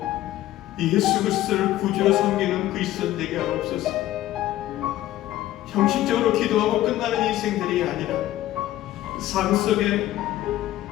예수 그리스도를 구주로 섬기는 그리스도인 되게 하옵소서. 형식적으로 기도하고 끝나는 인생들이 아니라 삶 속에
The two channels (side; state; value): right; quieter; 14.5 dB